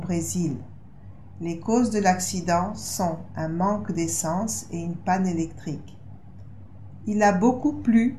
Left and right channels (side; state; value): both; identical; correlation 1.00